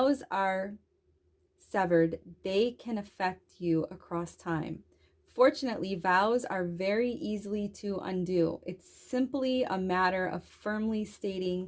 are severed, they can affect you across time. Fortunately, vows are very easily to undo. It's simply a matter of firmly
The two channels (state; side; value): identical; both; correlation 1.00